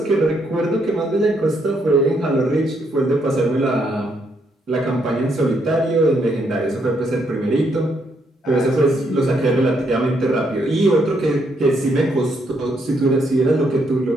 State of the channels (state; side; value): normal; both; correlation 0.74